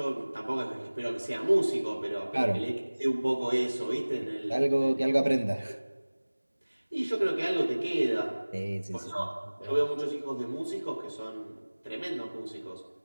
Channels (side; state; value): both; inverted; correlation -1.00